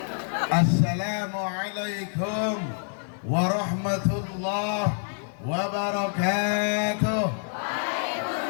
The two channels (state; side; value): silent; right; 60 dB below the other